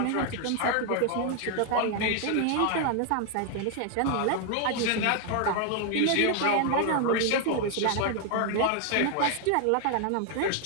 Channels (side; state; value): both; different; correlation 0.00